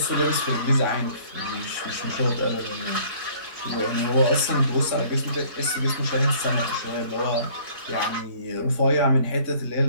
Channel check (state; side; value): late; left; 3.6 ms